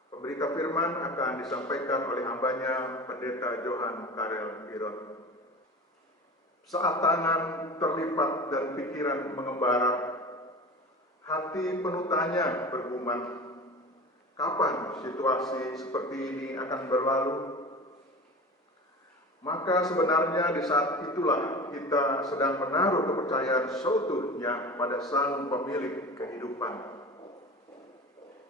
Pemberita firman akan disampaikan oleh hambanya Pendeta Johan Karel Girot. Saat tangan terlipat dan pikiran mengembara, hati penuh tanya bergumam, kapan situasi seperti ini akan berlalu? Maka sebenarnya di saat itulah kita sedang menaruh kepercayaan seutuhnya pada Sang Pemilik kehidupan.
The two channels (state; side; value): normal; both; correlation 0.34